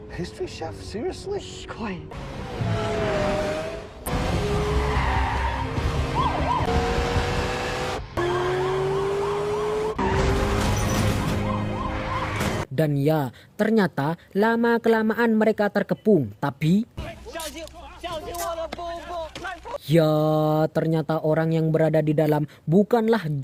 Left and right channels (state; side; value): identical; both; correlation 1.00